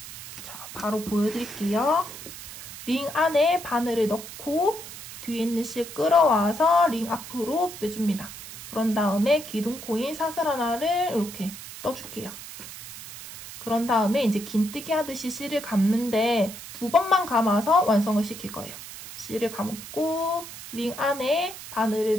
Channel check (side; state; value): right; noise; hiss, 13 dB below the sound